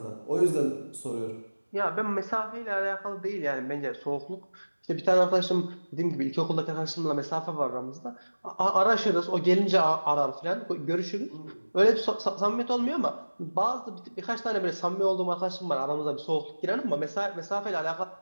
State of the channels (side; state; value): both; inverted; correlation -1.00